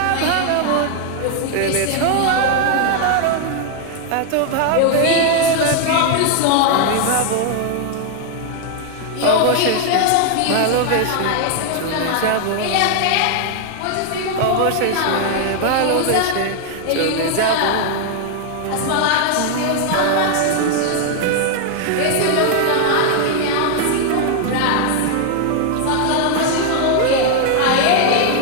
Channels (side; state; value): both; different; correlation 0.00